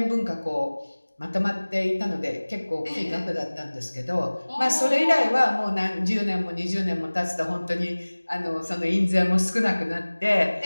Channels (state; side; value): inverted; both; correlation -1.00